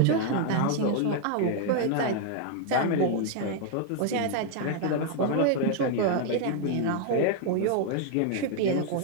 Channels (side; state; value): both; different; correlation 0.00